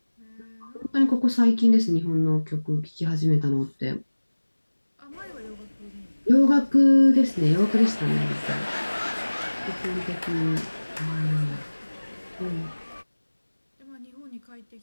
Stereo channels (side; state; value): both; inverted; correlation -1.00